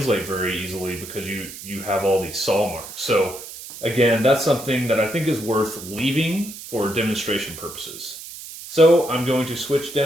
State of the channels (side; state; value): right; noise; hiss, 13 dB below the sound